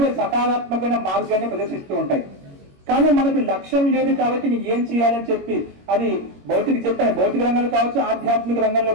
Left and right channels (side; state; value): left; late; 21 ms